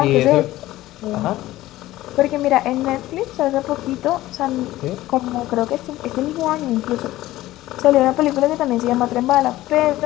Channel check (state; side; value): quieter; right; 16.1 dB